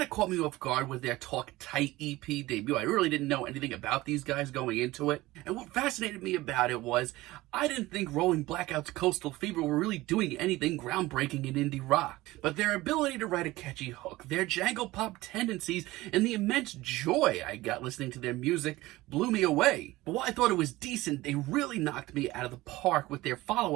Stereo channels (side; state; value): left; quieter; 18.7 dB